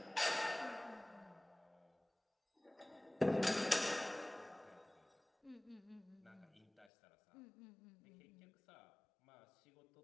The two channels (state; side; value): drops out; right; at 6.9 s